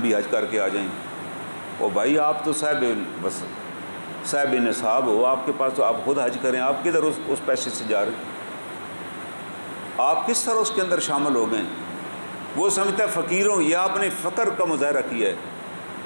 حج کر کے آ جائیں۔ او بھائی آپ تو صاحب نصاب ہو، آپ کے پاس تو آپ خود حج کریں، آپ کدھر اس پیسے سے جا رہے، آپ کس طرح اس کے اندر شامل ہو گئے؟ وہ سمجھتا ہے فقیروں، یہ آپ نے فقر کا مظاہرہ کیا ہے،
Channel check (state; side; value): inverted; both; correlation -1.00